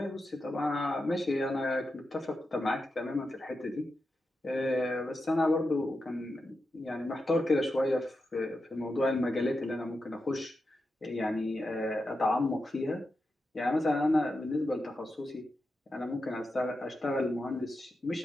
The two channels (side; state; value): both; normal; correlation 0.89